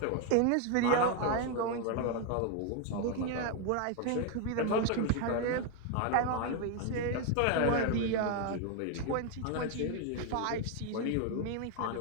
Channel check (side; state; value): both; different; correlation 0.01